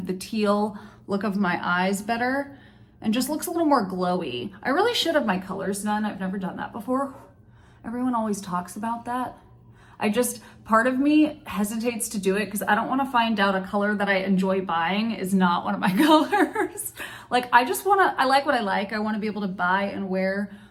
the teal look of my eyes better and just looks a little more glowy. I really should have my colors done. I've never done that before. Everyone always talks about that. Part of me hesitates to do it because I don't want to find out a color that I enjoy buying is not one of my colors. Like, I like what I like. I want to be able to buy and wear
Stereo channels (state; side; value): identical; both; correlation 1.00